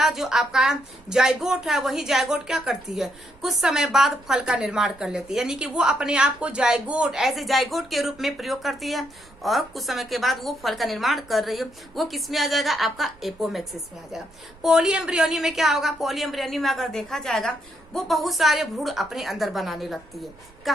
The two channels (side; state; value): right; noise; rumble, 26 dB below the sound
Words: जो आपका जाइगोट है वही जाइगोट क्या करती है, कुछ समय बाद फल का निर्माण कर लेती है, यानी कि वो अपने आप को जाइगोट ऐसे जाइगोट के रूप में प्रयोग करती है, और कुछ समय के बाद वो फल का निर्माण कर रही है। वो किस में आ जाएगा, आपका एपोमिक्सिस में आ जाएगा। पॉलीएम्ब्रियोनी में क्या होगा, पॉलीएम्ब्रियोनी में अगर देखा जाएगा वो बहुत सारे भ्रूण अपने अंदर बनाने लगती है।